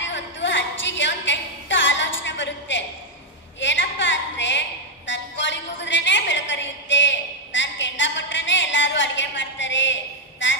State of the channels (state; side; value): normal; both; correlation 0.01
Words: ಹೊತ್ತು ಅಜ್ಜಿಗೆ ಒಂದು ಕೆಟ್ಟ ಆಲೋಚನೆ ಬರುತ್ತೆ. ಏನಪ್ಪಾ ಅಂದ್ರೆ, ನನ್ ಕೋಳಿ ಕೂಗಿದ್ರೇನೆ ಬೆಳಕರಿಯುತ್ತೆ, ನಾನ್ ಕೆಂಡ ಕೊಟ್ರೇನೆ ಎಲ್ಲಾರು ಅಡ್ಗೆ ಮಾಡ್ತಾರೆ,